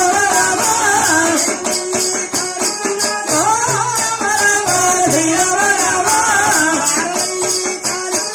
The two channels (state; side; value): identical; both; correlation 1.00